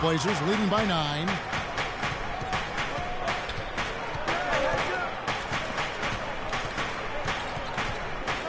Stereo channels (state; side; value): identical; both; correlation 1.00